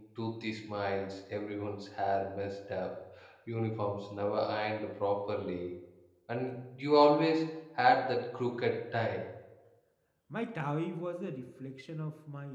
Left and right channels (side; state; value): both; identical; correlation 1.00